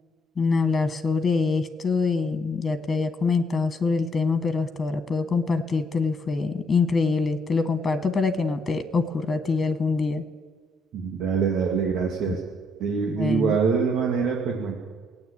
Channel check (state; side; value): normal; both; correlation 0.72